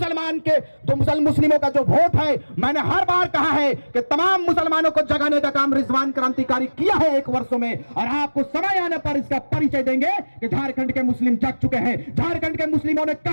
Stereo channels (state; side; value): inverted; both; correlation -1.00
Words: के जो मुस्लिमों का जो वोट है, मैंने हर बार कहा है कि तमाम मुसलमानों को जगाने का काम रिजवान क्रांतिकारी किया है 1 वर्षों में, और आपको समय आने पर इसका परिचय देंगे कि झारखंड के मुस्लिम जग चुके हैं। झारखंड के मुस्लिमों ने